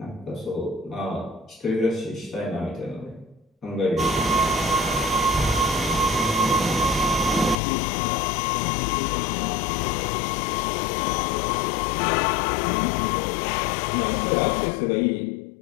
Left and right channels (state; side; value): drops out; right; at 7.6 s